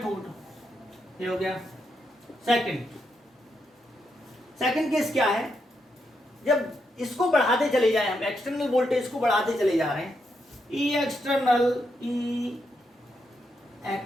ये हो गया सेकंड केस क्या है, जब इसको बढ़ाते चले जाए, हम एक्सटर्नल वोल्टेज को बढ़ाते चले जा रहे हैं, ई एक्सटर्नल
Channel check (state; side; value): normal; both; correlation 0.81